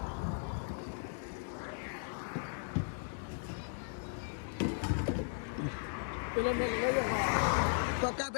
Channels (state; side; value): silent; right; digital silence